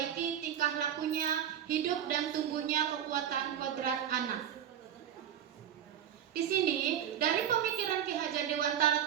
tingkah lakunya, hidup dan tumbuhnya kekuatan kodrat anak. Di sini, dari pemikiran Ki Hajar Dewantara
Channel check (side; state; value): left; quieter; 9.7 dB